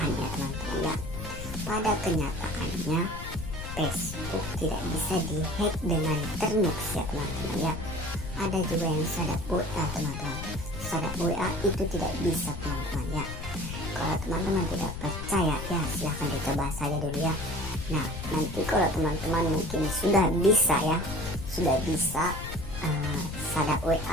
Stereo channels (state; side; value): noise; left; rumble, 8 dB below the sound